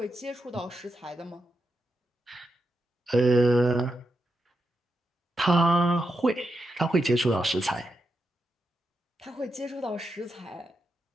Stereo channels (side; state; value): both; normal; correlation 0.86